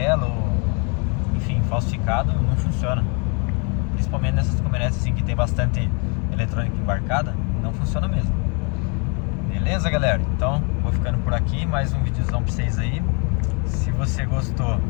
enfim, falsificado, não funciona. Principalmente nessas caminhonetes assim que tem bastante eletrônica embarcada, não funciona mesmo. Beleza, galera? Então, vou ficando por aqui, mais um videozão pra vocês aí. Se você gostou,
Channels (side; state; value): right; quieter; 35.0 dB